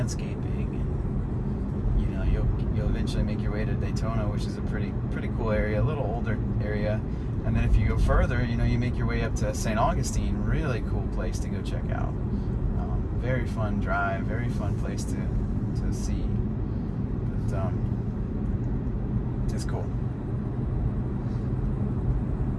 and, you know, you'll eventually make your way to Daytona, which is a pretty cool area, a little older area. And then if you go further, you know, you make your way up to St. Augustine, really cool place to go check out. Very fun drive, very fun place to see. But It's cool.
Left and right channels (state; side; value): identical; both; correlation 1.00